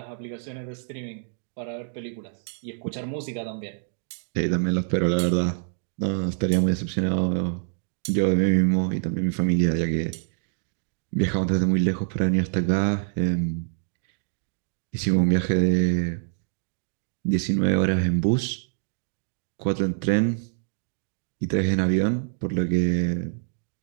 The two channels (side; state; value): left; silent; digital silence